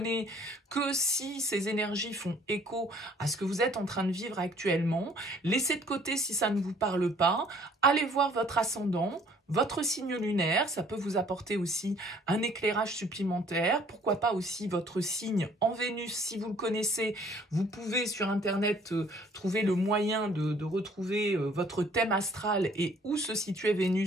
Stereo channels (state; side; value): normal; both; correlation 0.58